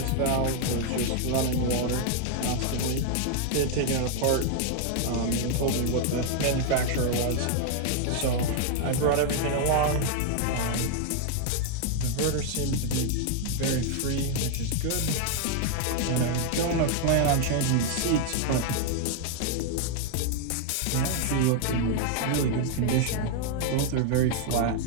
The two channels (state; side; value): different; both; correlation 0.00